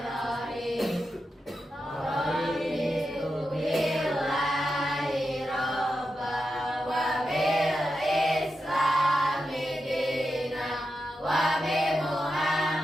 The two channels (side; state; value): both; normal; correlation 0.89